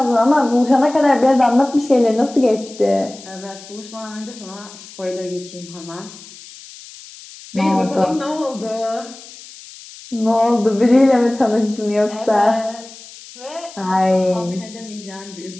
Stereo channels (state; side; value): noise; left; hiss, 18 dB below the sound